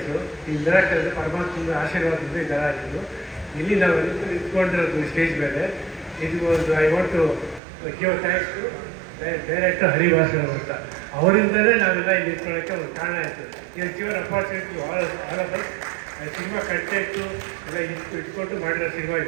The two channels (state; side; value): drops out; left; at 7.6 s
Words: ಈ ಮಿರಾಕಲ್ ಪರಮಾತ್ಮನ ಆಶೀರ್ವಾದದಿಂದ ಈ ಥರ ಆಗಿದ್ದು. ಇಲ್ಲಿ ನಾವು ಇಟ್ಕೊಂಡಿರೋದು ಸ್ಟೇಜ್ ಮೇಲೆ. ಇದು ಒಂದು I want to give thanks to director Harivasan ಅಂತ. ಅವರಿಂದಲೇ ನಾವೆಲ್ಲ ಇಲ್ಲಿ ಇಟ್ಕೊಳ್ಳೋಕ್ಕೆ ಒಂದು ಕಾರಣ ಆಯಿತು. ಇದು given opportunity all of us. Cinema content ಎಲ್ಲ ಇಟ್ಕೊಂಡು ಮಾಡಿರೋ ಸಿನಿಮಾ